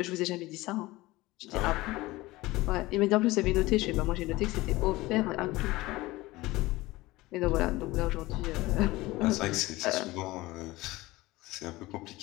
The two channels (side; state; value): right; quieter; 19.5 dB